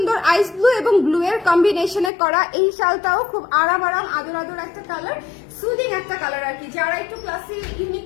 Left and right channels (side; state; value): right; drops out; at 2.1 s